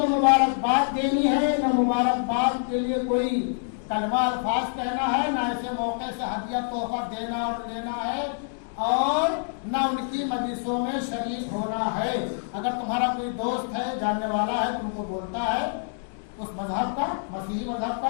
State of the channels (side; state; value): right; silent; digital silence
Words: مبارکباد دینی ہے، نہ مبارکباد کے لیے کوئی کلمہ الفاظ کہنا ہے، نہ ایسے موقع سے ہدیہ تحفہ دینا اور لینا ہے، اور نہ ان کی مجلسوں میں شریک ہونا ہے۔ اگر تمہارا کوئی دوست ہے، جاننے والا ہے، تم کو بولتا ہے اس مذہب کا، مسیحی مذہب